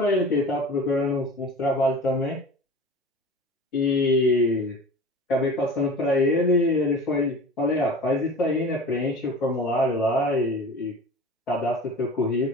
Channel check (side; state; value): both; normal; correlation 0.37